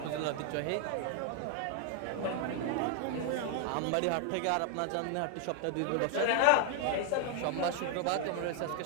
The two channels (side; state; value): both; different; correlation 0.00